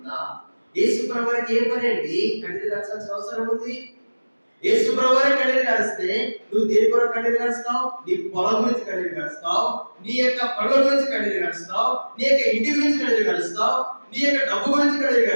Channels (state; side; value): inverted; both; correlation -1.00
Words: యేసు ప్రభువుకి ఏం పని అండి కన్నీరు కాల్చాల్సిన అవసరం ఉంది? యేసు ప్రభువే కన్నీరు కారిస్తే నువ్వు దేని కొరకు కన్నీరు కారుస్తావు? నీ పొలం గురించి కన్నీరు కారుస్తావు, నీ యొక్క పనుల గురించి కన్నీరు కారుస్తావు, నీ యొక్క ఇంటి గురించి కన్నీరు కారుస్తావు, నీ యొక్క డబ్బు గురించి కన్నీరు